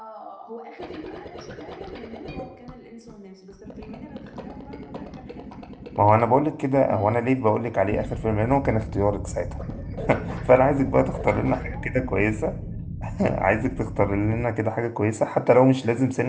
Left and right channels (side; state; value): both; identical; correlation 1.00